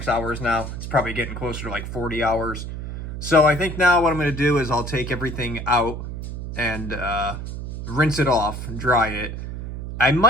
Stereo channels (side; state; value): right; noise; hum, 7 dB below the sound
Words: hours now. It's probably getting closer to like 40 hours. So I think now what I'm going to do is I'll take everything out and rinse it off, dry it. I